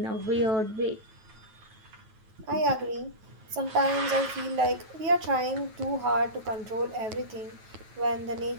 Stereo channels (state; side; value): late; left; 9.2 ms